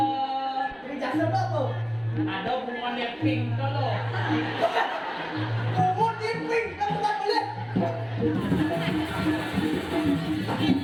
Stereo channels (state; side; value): identical; both; correlation 1.00